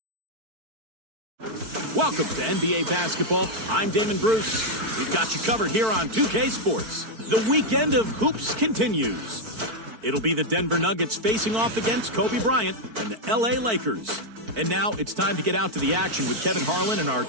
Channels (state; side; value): late; left; 4.5 ms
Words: Welcome to NBA Basketball. I'm Damon Bruce. We've got you covered here on 2K Sports. The weekend of hoops continues. It'll be the Denver Nuggets facing off against Kobe Bryant and the LA Lakers. And now it's time to get out to the action with Kevin Harlan and our